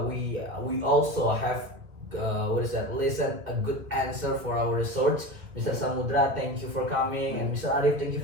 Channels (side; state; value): left; late; 2.2 ms